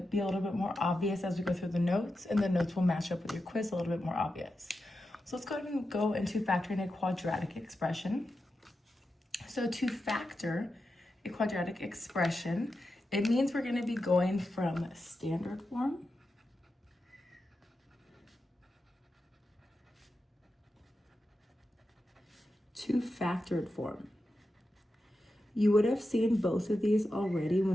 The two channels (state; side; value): normal; both; correlation 0.90